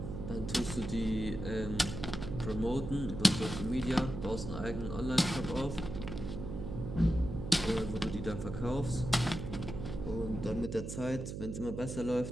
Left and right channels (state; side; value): noise; right; hum, 6 dB below the sound